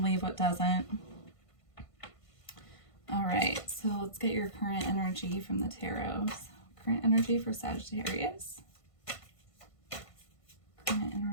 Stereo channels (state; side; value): late; right; 1.5 ms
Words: leave what doesn't. All right, so let's get your current energy from the tarot. Current energy for Sagittarius. Current